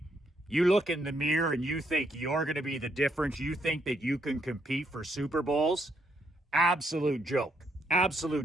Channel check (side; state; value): both; normal; correlation 0.74